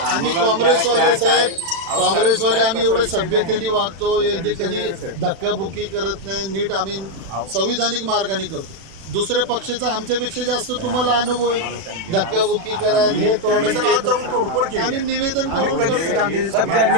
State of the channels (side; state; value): left; late; 36 ms